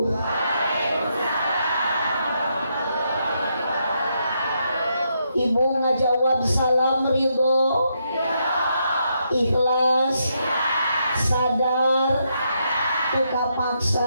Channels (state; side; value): inverted; both; correlation -0.79